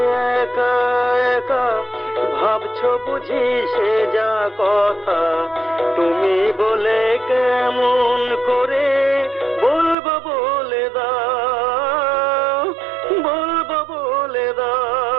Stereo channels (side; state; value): left; drops out; at 10.0 s